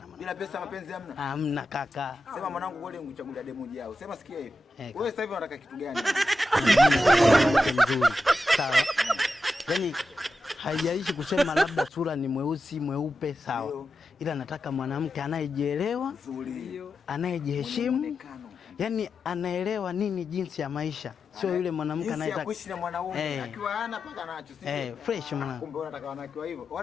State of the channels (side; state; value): both; normal; correlation 0.90